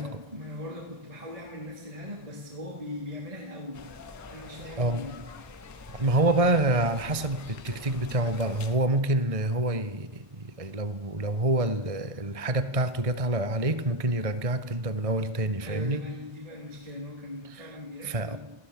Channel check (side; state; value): left; late; 1.6 ms